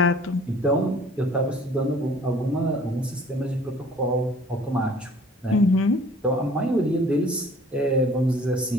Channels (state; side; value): normal; both; correlation 0.52